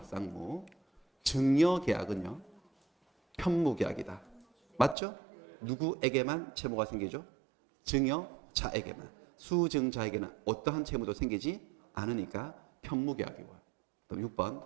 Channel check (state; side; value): drops out; left; at 5.0 s